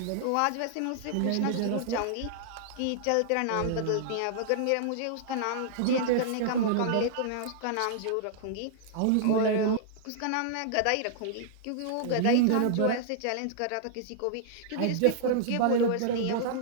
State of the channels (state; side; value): different; both; correlation -0.01